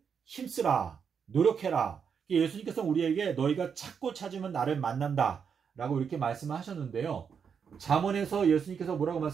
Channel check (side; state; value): left; quieter; 6.8 dB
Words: 힘쓰라, 노력해라. 예수님께서 우리에게 너희가 찾고 찾으면 나를 만난다 라고 이렇게 말씀을 하셨는데요. 잠언에서 예수님께서 뭐라고